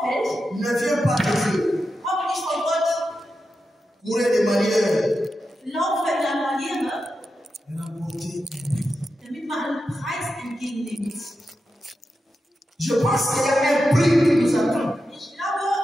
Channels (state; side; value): normal; both; correlation 0.89